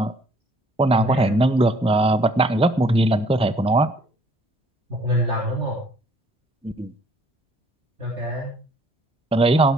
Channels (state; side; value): normal; both; correlation 0.61